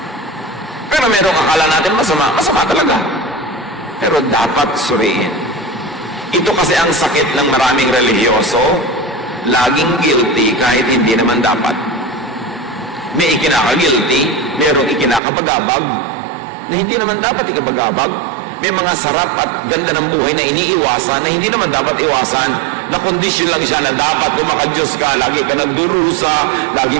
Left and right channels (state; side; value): drops out; left; at 15.2 s